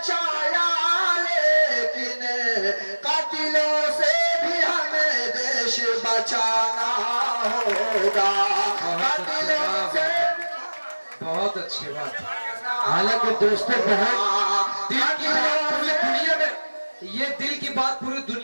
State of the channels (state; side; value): inverted; both; correlation -1.00